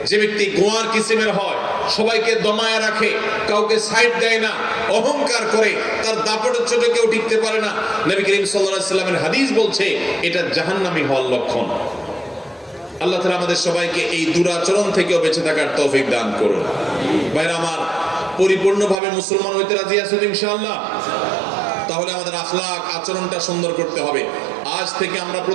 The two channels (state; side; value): drops out; left; at 19.0 s